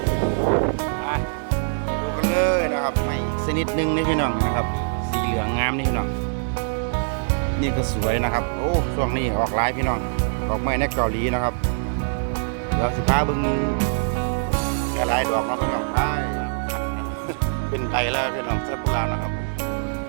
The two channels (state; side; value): silent; left; 63 dB below the other